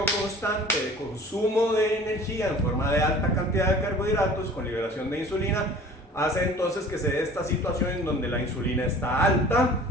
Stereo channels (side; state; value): both; normal; correlation 0.45